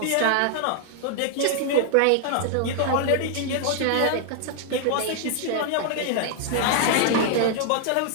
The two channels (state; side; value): different; both; correlation 0.00